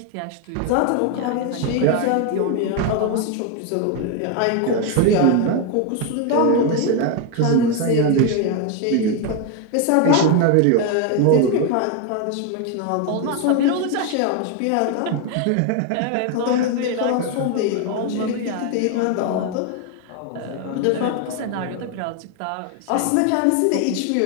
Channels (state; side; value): different; both; correlation 0.01